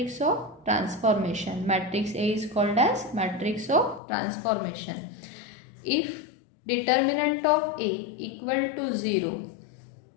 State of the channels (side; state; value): right; drops out; at 4.0 s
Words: of transformation. Matrix A is called as matrix of transformation. If determinant of A equal to 0,